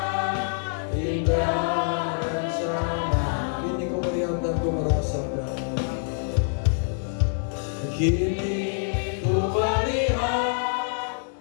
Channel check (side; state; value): right; silent; digital silence